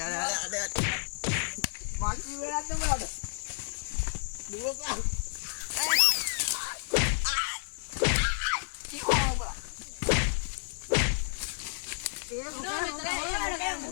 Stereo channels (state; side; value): silent; right; digital silence